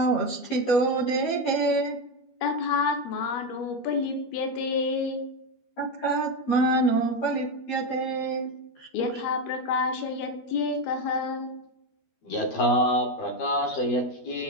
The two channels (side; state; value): right; late; 12 ms